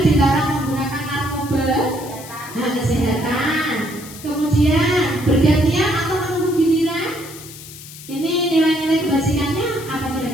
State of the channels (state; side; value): noise; left; hiss, 16 dB below the sound